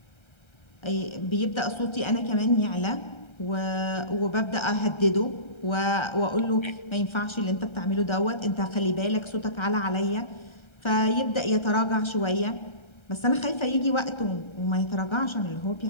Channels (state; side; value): late; right; 1.3 ms